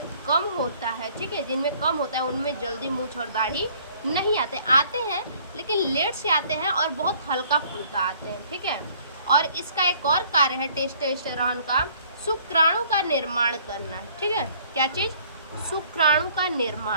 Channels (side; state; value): both; inverted; correlation -0.58